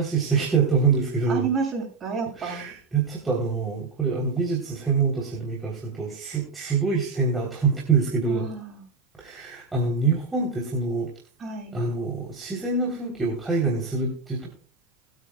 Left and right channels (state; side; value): quieter; left; 4.2 dB